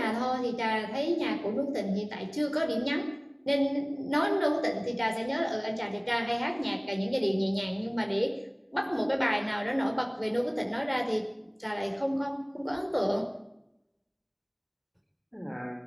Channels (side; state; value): both; identical; correlation 1.00